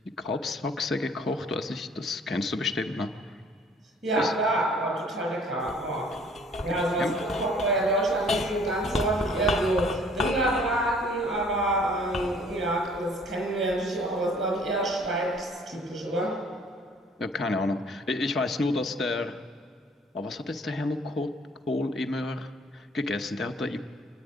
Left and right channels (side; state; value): both; normal; correlation 0.56